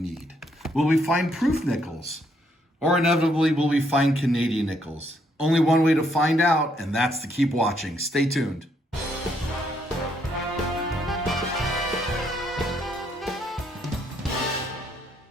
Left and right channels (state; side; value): normal; both; correlation 0.72